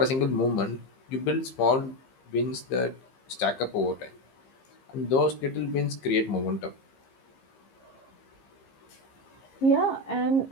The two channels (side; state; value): right; late; 15 ms